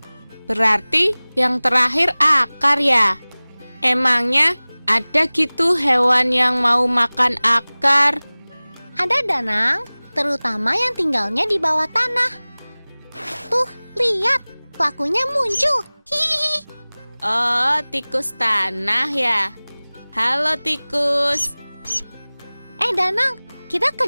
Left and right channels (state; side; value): inverted; both; correlation -1.00